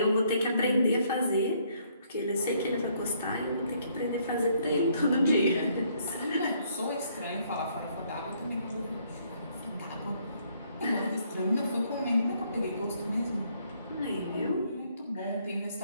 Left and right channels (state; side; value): inverted; both; correlation -0.68